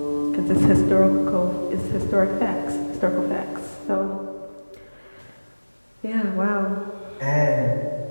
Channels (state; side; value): inverted; both; correlation -1.00